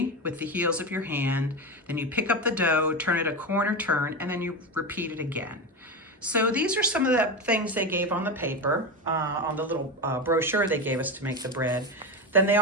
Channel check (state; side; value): normal; both; correlation 0.18